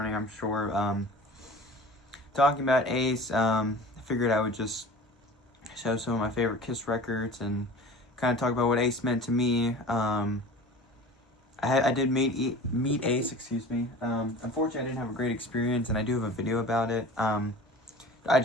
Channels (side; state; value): both; normal; correlation 0.40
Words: I'm sure. Talking about Ace, I figured I would just show some of my favorite Kiss records and kind of talk about what Ace meant to me. I did meet Ace, excuse me. Unfortunately, I didn't have a great experience, and I do have a video about it. I